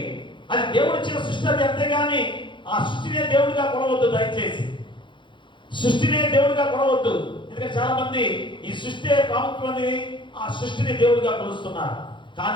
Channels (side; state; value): right; late; 0.23 ms